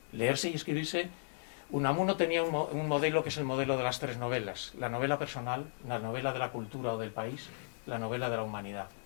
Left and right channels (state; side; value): silent; right; digital silence